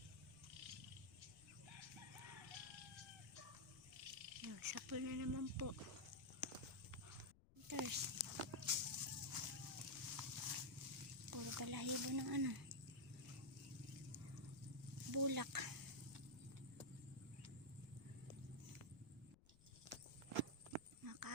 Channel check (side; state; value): left; noise; rumble, 23 dB below the sound